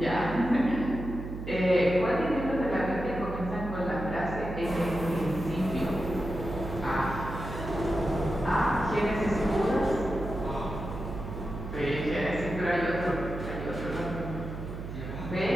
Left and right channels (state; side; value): noise; right; hum, 8 dB below the sound